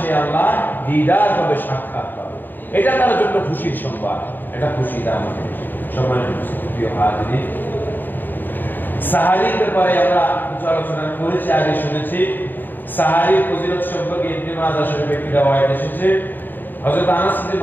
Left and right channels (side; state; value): right; late; 0.091 ms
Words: সে আল্লাহ দিদার পাবে, সাক্ষাৎ পাবে, এটা তার জন্য খুশির সংবাদ। এটা খুশি দাম সম্মানিত প্রিয় হাজিরিন, সাহারির ব্যাপারে আমরা কিছু আলোচনা করেছি, আগে শুনেছি। সাহারির ফজিলত সম্পর্কে ইবনে মাজাহ শরীফে একটি রওয়ায়াত এসেছে। হযরত আনাস ইবনে